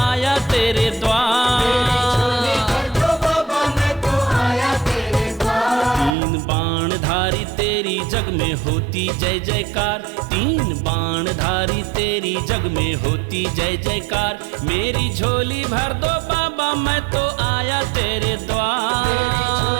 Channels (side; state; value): left; drops out; at 6.2 s